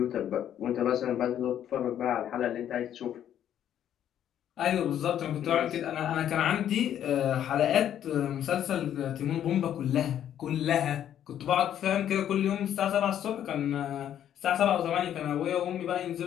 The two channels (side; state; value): right; quieter; 10.4 dB